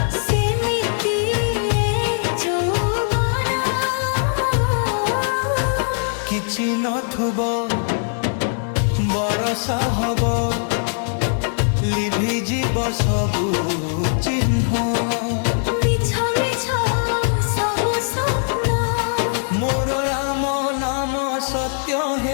सेमिति यौवन किछि नथुबो बरसा हबो लिभि जीव सबु चिन्ह मिछ मिछ सबु स्वप्न मोर राम नाम सत्य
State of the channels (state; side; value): silent; right; digital silence